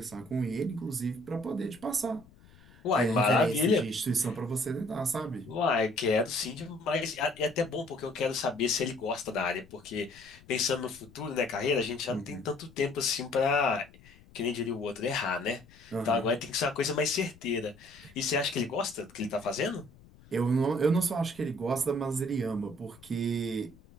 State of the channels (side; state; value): left; noise; rumble, 24 dB below the sound